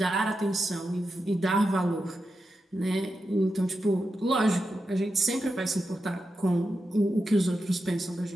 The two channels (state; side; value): normal; both; correlation 0.89